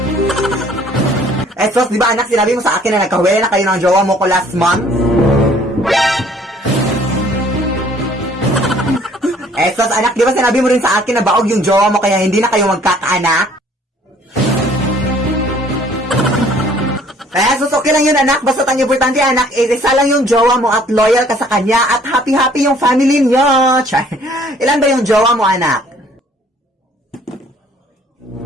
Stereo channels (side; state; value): both; normal; correlation 0.58